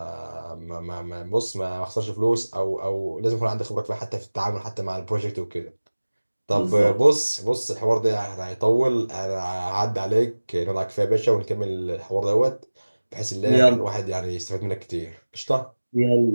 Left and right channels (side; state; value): both; inverted; correlation -1.00